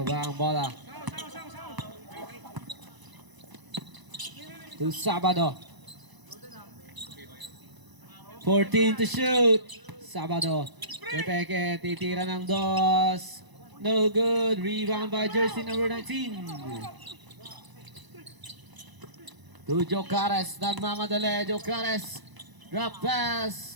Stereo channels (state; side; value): late; left; 1.0 ms